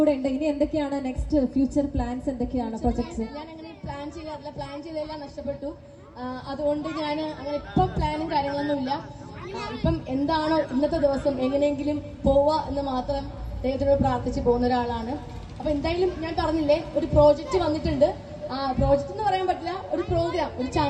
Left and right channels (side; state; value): both; identical; correlation 1.00